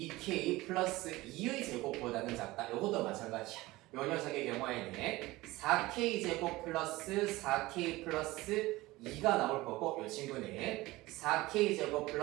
플러스 2의 제곱보다는 작다. 이것도 마찬가지야. 요 녀석의 경우에는 4k 제곱 플러스 4k 플러스 2가 나올 거고, 이 친구는 4k 제곱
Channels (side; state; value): left; quieter; 19.5 dB